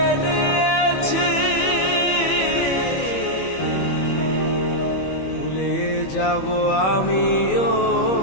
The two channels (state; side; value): late; right; 21 ms